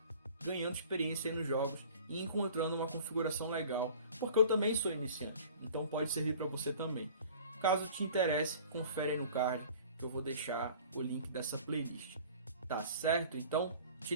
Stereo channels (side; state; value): both; inverted; correlation -0.46